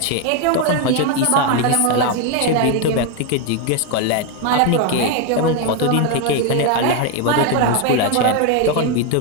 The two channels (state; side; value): different; both; correlation 0.01